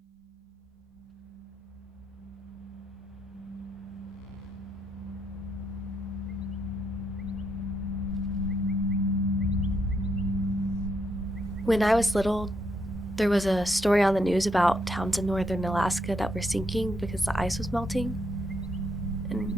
When I was little, there was a story on the news about towns in northern Alaska that were sinking because the ice was melting,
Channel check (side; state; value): both; normal; correlation 0.77